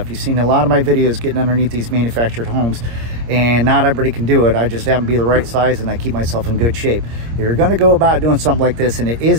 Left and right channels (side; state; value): left; late; 26 ms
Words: You've seen a lot of my videos getting underneath these manufactured homes, and not everybody can do it. I just happen to be the right size, and I keep myself in good shape. If you're going to go about doing something like this and it